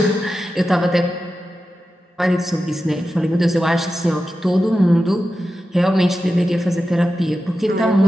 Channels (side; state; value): both; normal; correlation 0.92